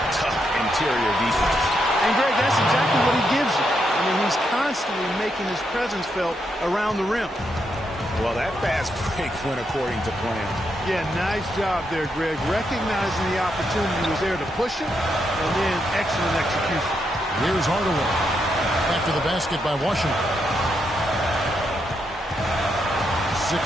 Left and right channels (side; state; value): both; normal; correlation 0.81